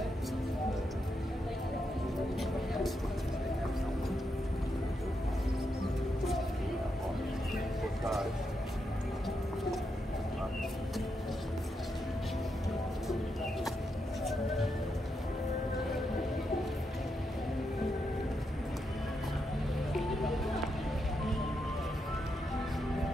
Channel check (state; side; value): normal; both; correlation 0.83